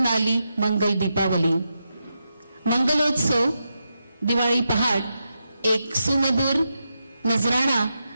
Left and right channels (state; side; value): inverted; both; correlation -0.86